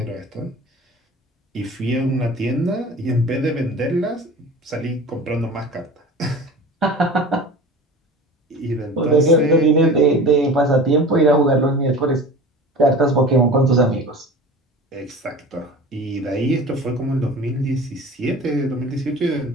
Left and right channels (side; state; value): both; normal; correlation 0.38